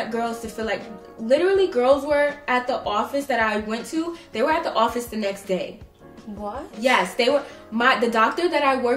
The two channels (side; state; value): both; identical; correlation 1.00